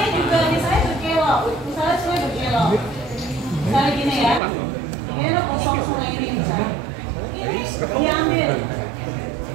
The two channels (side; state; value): left; drops out; at 4.4 s